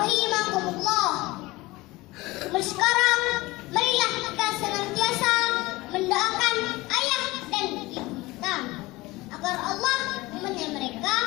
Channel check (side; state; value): right; quieter; 20.6 dB